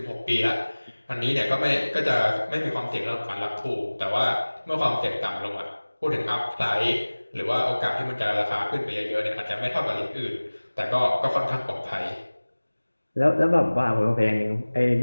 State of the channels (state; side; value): inverted; both; correlation -1.00